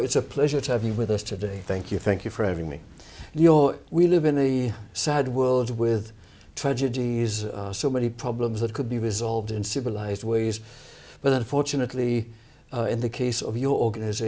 it's a pleasure to have you with us today. Thank you. Thank you for having me. Leeor, we live in a sad world with tragedies, so many problems that could be resolved in civilized ways. But unfortunately, in the case of your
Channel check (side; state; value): both; identical; correlation 1.00